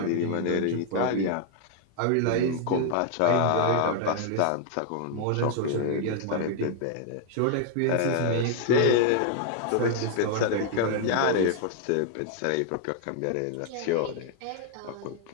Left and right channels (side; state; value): both; different; correlation 0.00